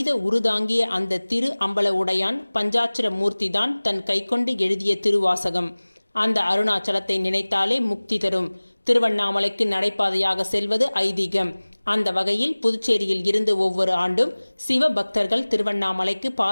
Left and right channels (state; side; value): inverted; both; correlation -1.00